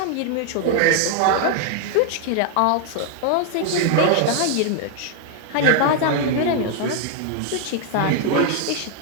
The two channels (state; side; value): different; both; correlation 0.00